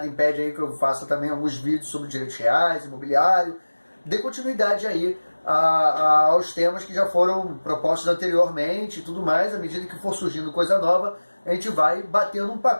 impede aí que eu faça também alguns vídeos sobre direitos reais, imobiliário, dê continuidade aí aos temas que já foram propostos anteriormente e tudo mais. À medida que for surgindo coisa nova, a gente vai batendo um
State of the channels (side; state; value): both; inverted; correlation -1.00